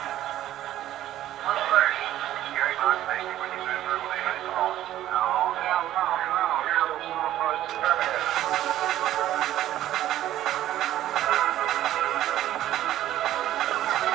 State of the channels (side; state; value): left; quieter; 13.1 dB